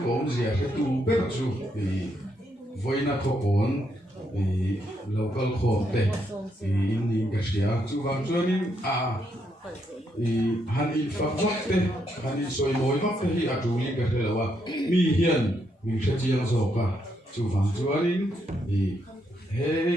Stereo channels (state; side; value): normal; both; correlation 0.77